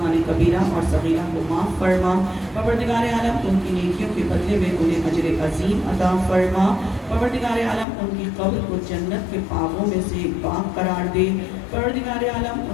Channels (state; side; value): drops out; right; at 7.9 s